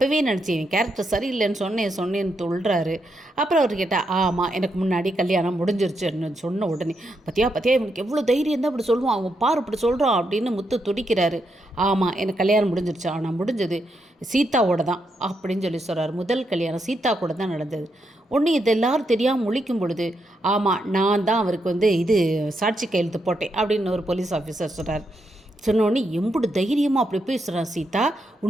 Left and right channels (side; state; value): both; normal; correlation 0.81